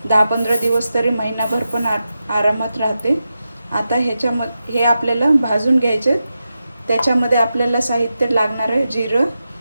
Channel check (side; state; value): both; inverted; correlation -0.90